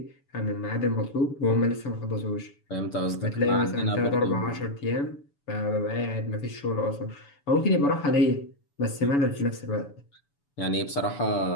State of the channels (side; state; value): right; late; 7.0 ms